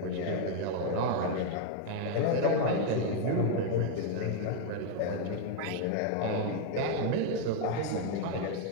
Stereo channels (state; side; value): different; both; correlation 0.01